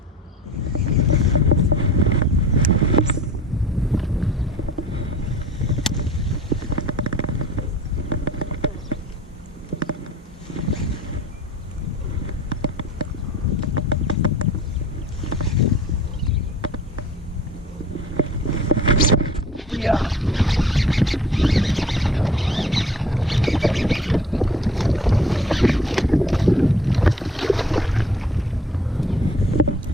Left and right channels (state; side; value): normal; both; correlation 0.48